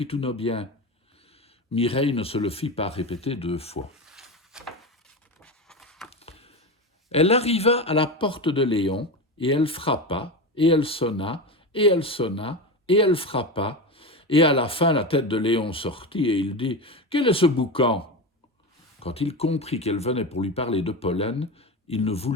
tous nos biens. » Mireille ne se le fit pas répéter 2 fois. Elle arriva à la porte de Léon, et elle frappa, et elle sonna, et elle sonna, et elle frappa, et à la fin la tête de Léon sortit, et il dit « Quel est ce boucan ?» Quand il comprit qu'elle venait pour lui parler de pollen, il ne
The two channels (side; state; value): both; normal; correlation 0.21